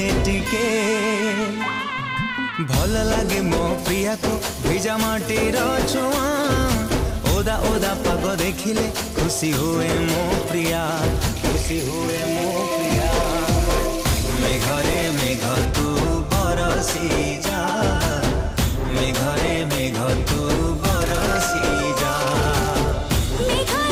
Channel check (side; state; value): both; identical; correlation 1.00